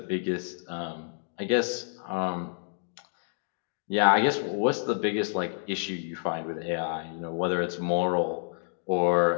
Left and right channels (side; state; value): right; silent; digital silence